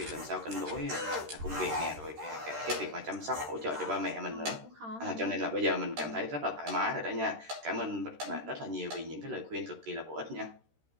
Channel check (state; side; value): late; left; 13 ms